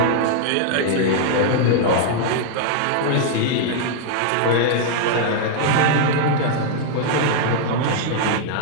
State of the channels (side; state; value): both; different; correlation -0.01